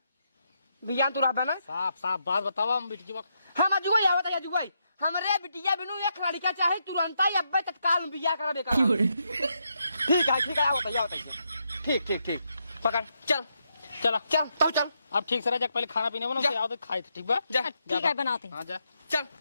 बियान तू रहबा ना? साफ साफ बात बतावा हम बिटिया। हम अजुगई आवत है, अजुगई हमरे बिटिया बिनु एक लड़का चाहे तुरंत ही अब्बे तत्काल में बियाह कराबे कर। ठीक है आवत है। ठीक ठीक ठीक पकड़ चल चला चल तब चल। अब ठीक से रह जा, पहले खाना पीने बना जा। आओ तो खाए थे, ठीक बा? जा ठीक है बनाते हैं। हाँ जा। चल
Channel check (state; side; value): inverted; both; correlation -0.80